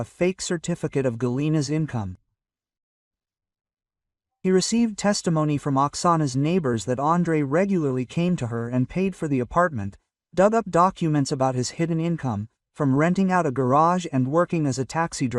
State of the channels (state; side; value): identical; both; correlation 1.00